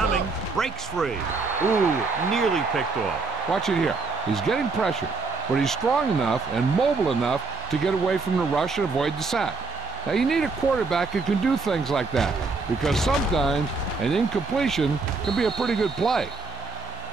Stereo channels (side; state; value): left; quieter; 4.0 dB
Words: Breaks free. Ooh, nearly picked off. Watch it here. He's getting pressure, but he's strong enough and mobile enough to get away from the rush and avoid the sack. Now, you need a quarterback who can do things like that, because sometimes an incompletion can be a pretty good play.